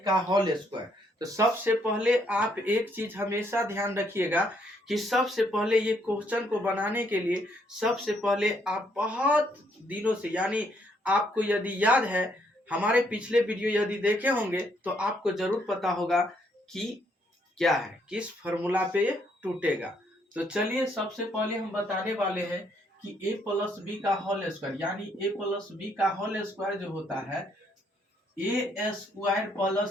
का होल स्क्वायर। तो सबसे पहले आप एक चीज हमेशा ध्यान रखिएगा कि सबसे पहले ये क्वेश्चन को बनाने के लिए सबसे पहले आप बहुत दिनों से यानी आपको यदि याद है हमारे पिछले वीडियो यदि देखे होंगे तो आपको जरूर पता होगा कि क्या है, किस फॉर्मूला पे ये टूटेगा। तो चलिए सबसे पहले हम बताने वाले हैं कि a+b का होल स्क्वायर यानी a+b का होल स्क्वायर जो होता है a² +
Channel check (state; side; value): normal; both; correlation 0.71